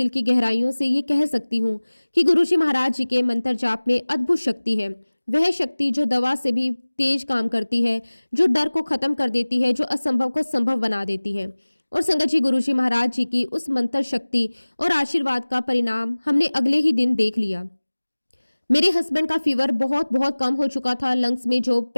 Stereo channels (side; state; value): both; inverted; correlation -1.00